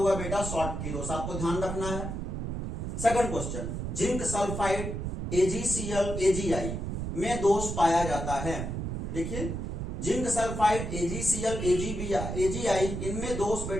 बेटा शॉटकी दोष, आपको ध्यान रखना है। Second question, zinc sulphide AgCl, AgI में दोष पाया जाता है। देखिए जिंक सल्फाइड AgCl, AgI इनमें दोष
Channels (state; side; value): noise; right; rumble, 4 dB below the sound